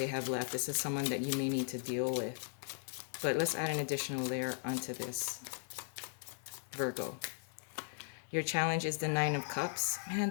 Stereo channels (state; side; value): silent; right; digital silence